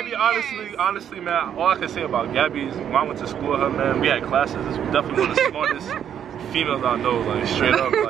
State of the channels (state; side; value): quieter; left; 9.2 dB